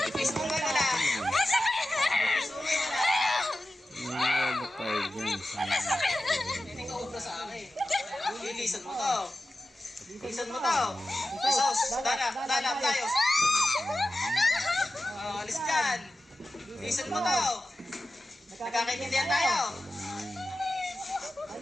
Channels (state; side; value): normal; both; correlation 0.94